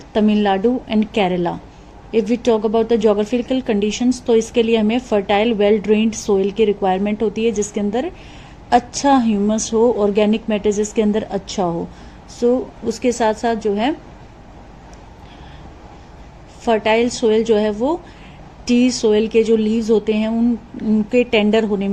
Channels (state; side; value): identical; both; correlation 1.00